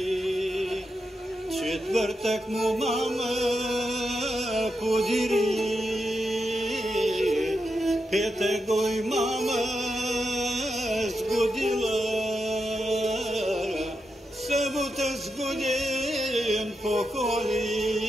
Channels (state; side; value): normal; both; correlation 0.86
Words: Четвъртък му мама подири, петък го и мама сгодила, събота сгоден поколи,